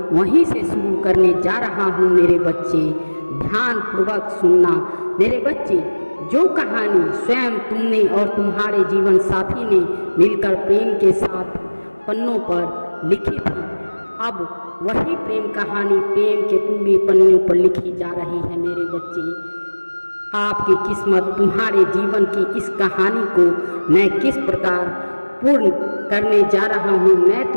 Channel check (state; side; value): inverted; both; correlation -1.00